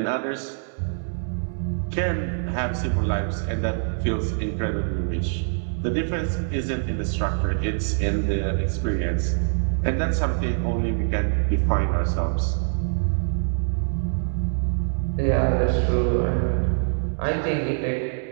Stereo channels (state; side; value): silent; left; digital silence